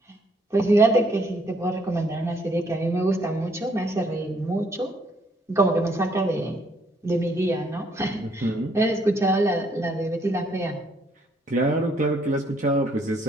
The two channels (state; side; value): normal; both; correlation 0.68